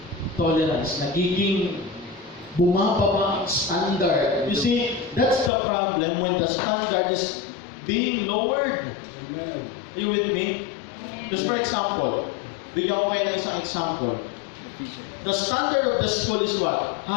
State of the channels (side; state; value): right; drops out; at 5.5 s